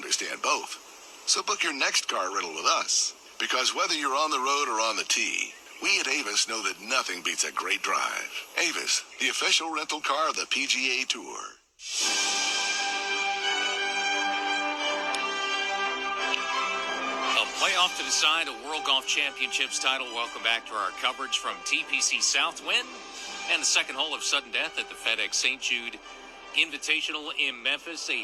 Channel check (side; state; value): both; identical; correlation 1.00